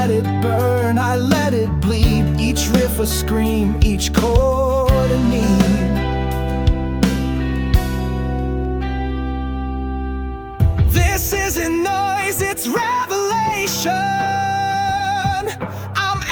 it burn, I let it bleed. Each riff a scream, each chord a need. This isn't noise, it's revelation. I'm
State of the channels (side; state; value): both; identical; correlation 1.00